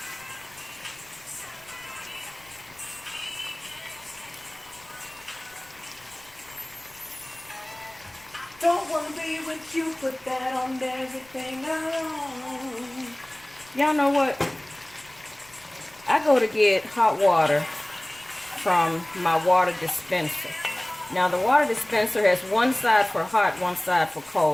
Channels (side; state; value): left; noise; rumble, 28 dB below the sound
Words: Don't wanna be with you, put that on everything I own. Y'all know what? I go to get hot water from my water dispenser. Now the water dispenser has one side for hot, one side for